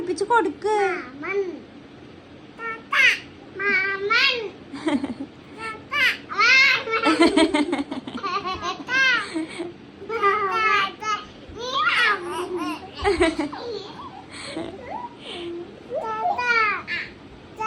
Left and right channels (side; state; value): both; identical; correlation 1.00